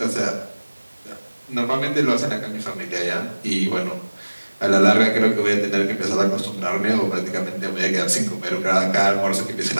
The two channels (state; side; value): inverted; both; correlation -1.00